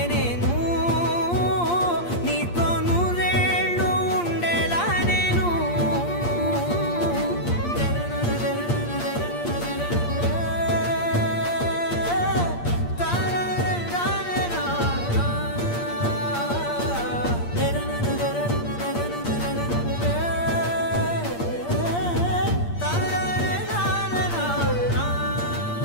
నేను నీతో నూరేళ్ళు ఉండేలా నేను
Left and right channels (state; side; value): late; right; 8.6 ms